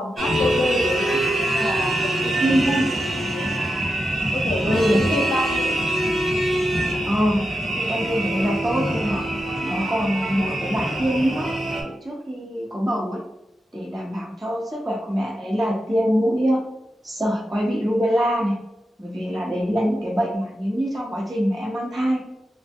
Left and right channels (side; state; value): both; normal; correlation 0.88